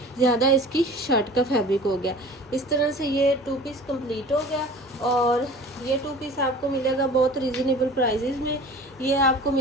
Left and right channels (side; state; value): both; normal; correlation 0.42